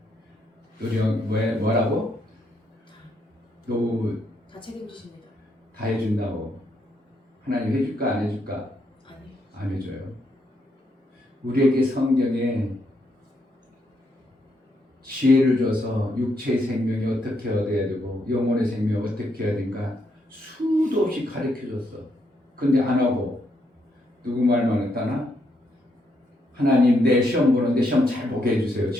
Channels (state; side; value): normal; both; correlation 0.77